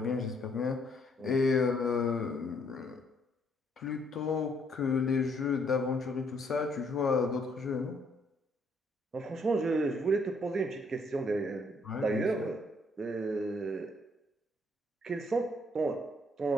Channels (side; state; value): both; normal; correlation 0.68